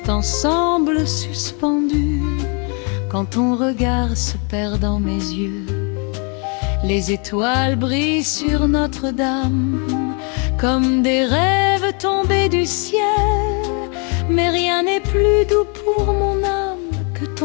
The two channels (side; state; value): right; quieter; 36.5 dB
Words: semble suspendu quand ton regard se perd dans mes yeux. Les étoiles brillent sur Notre-Dame comme des rêves tombés du ciel. Mais rien n'est plus doux pour mon âme que